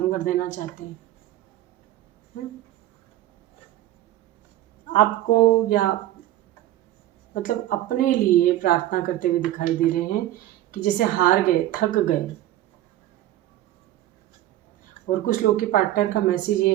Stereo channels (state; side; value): quieter; left; 14.1 dB